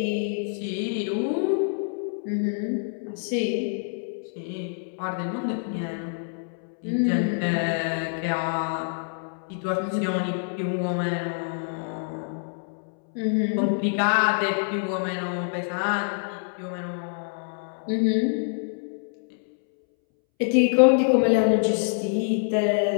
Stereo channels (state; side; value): silent; right; 61 dB below the other